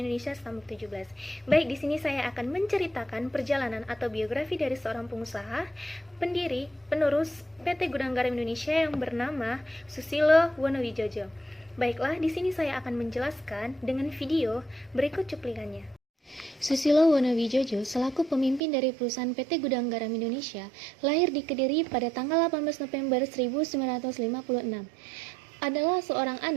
Indonesia Stambuk 17. Baik, di sini saya akan menceritakan perjalanan atau biografi dari seorang pengusaha, pendiri, penerus PT Gudang Garam Indonesia yang bernama Susilo Wonowijojo. Baiklah, di sini saya akan menjelaskan dengan video berikut cuplikannya. Susilo Wonowijojo selaku pemimpin dari perusahaan PT Gudang Garam Indonesia lahir di Kediri pada tanggal 18 November 1956. Adalah seorang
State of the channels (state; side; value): drops out; left; at 18.6 s